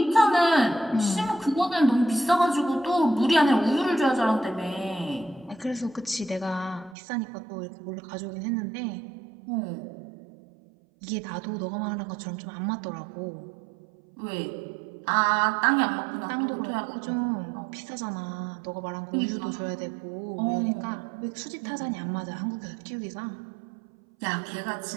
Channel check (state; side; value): drops out; left; at 7.0 s